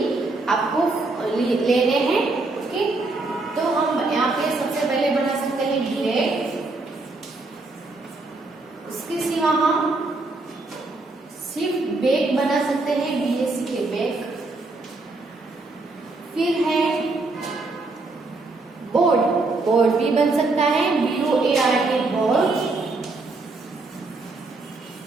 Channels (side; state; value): left; quieter; 3.3 dB